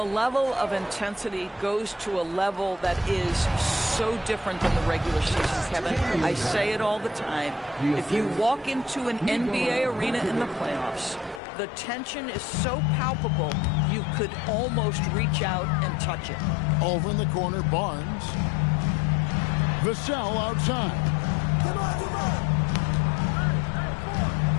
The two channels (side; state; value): right; drops out; at 11.4 s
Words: of intensity goes to a level that is so different than the regular season, Kevin. I say it all the time. If you walk into an NBA arena in the playoffs, the tension is so palpable you could almost reach out and touch it. Over in the corner, Barnes. Vassell outside.